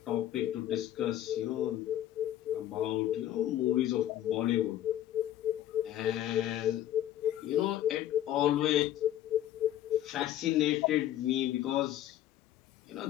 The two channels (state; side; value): quieter; right; 12.5 dB